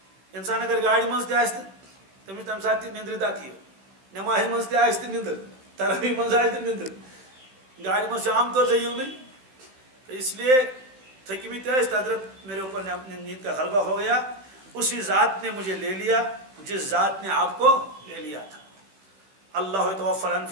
اِنسان اگر گاڑِ منٛز تہِ آسہِ تہٕ تٔمِس تَمہِ ساتہٕ تہِ نِندرِ دَکہٕ یِوان، نٮ۪مازِ منٛز تہِ آسہِ تہٕ نِندٕر، تراویح منٛز آسہِ تہٕ نِندٕر، گاڑِ منٛز چھُ عام طور سے یِونٕے. تو اس لیے تھٔکمٕتۍ ٲسۍ، حضرت میرے اوپر نیند کا غلبہ ہو گیا، اسی ذات نے مجھے لے لیا جس ذات نے آپ کو لے لیا تھا. اللہ یتوفی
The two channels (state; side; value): late; left; 15 ms